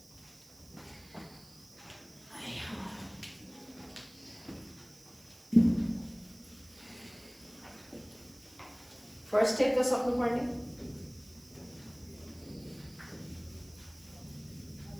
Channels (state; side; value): noise; right; hiss, 22 dB below the sound